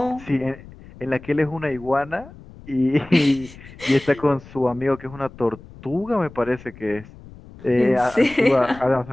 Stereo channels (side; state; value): left; noise; rumble, 19 dB below the sound